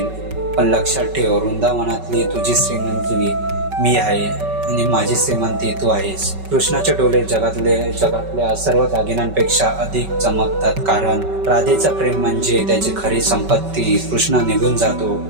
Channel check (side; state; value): left; late; 5.2 ms